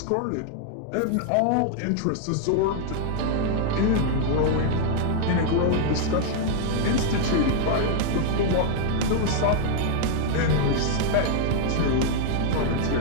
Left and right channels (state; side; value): different; both; correlation 0.00